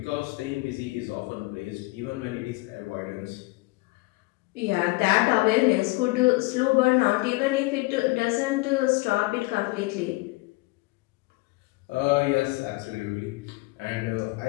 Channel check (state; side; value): quieter; right; 22.9 dB